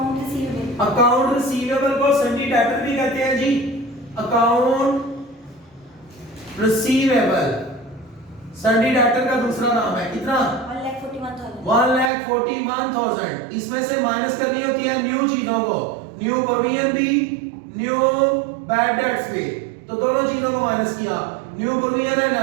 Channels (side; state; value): left; drops out; at 12.1 s